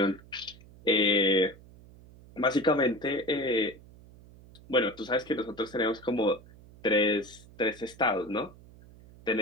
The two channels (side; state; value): right; noise; hum, 22 dB below the sound